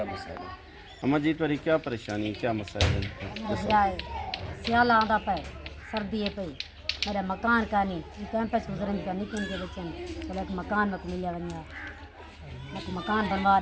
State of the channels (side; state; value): both; identical; correlation 1.00